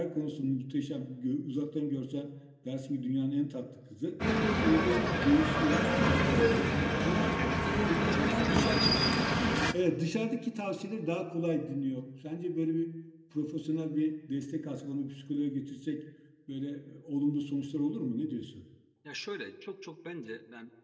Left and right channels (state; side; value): identical; both; correlation 1.00